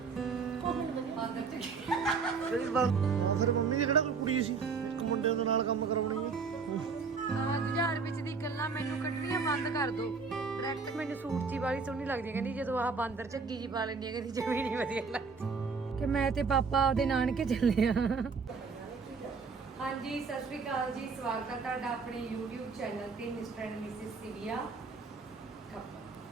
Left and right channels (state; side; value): quieter; left; 5.0 dB